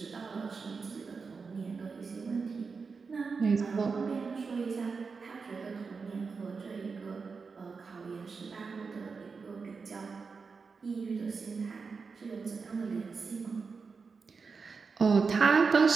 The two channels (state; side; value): quieter; left; 5.0 dB